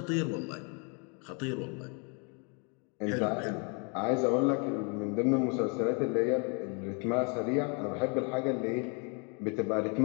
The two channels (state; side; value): quieter; right; 35.6 dB